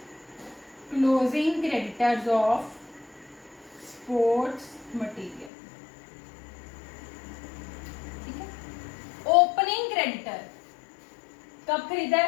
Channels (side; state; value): right; drops out; at 5.5 s